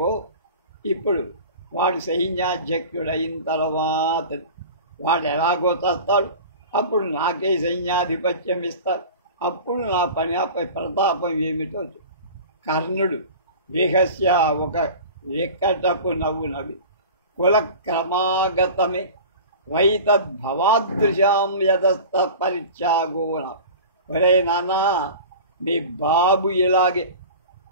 ఇప్పుడు వాడు సైన్యాధ్యక్షుడైన తర్వాత వాడు ఎలాగో చస్తాడు, అప్పుడు నాకే సైన్యాధిపత్యం ఇస్తారు, అప్పుడు నా ప్రతాపం ఏమిటో. కర్ణుడు విహస్య ఒక వికటపు నవ్వు నవ్వి కులక్రమాగతమే వైతద్భవాదృశాం యదస్త పరిత్యాగోన. ఒరే నాన్నా, మీ బాబు ఇలాగే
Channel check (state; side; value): inverted; both; correlation -0.37